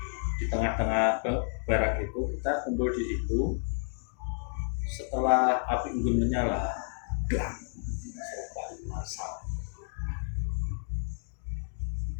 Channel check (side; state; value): right; silent; 57 dB below the other